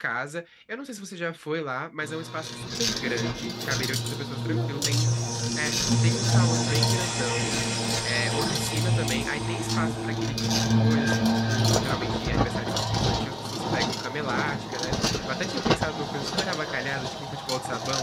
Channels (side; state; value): both; identical; correlation 1.00